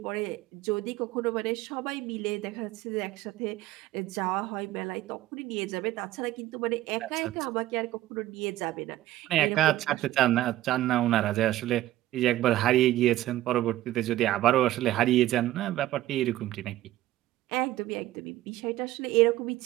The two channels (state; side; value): quieter; left; 15.1 dB